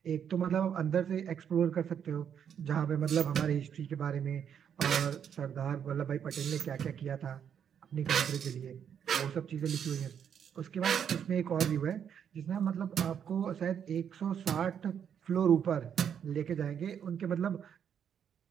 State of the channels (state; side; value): quieter; left; 8.3 dB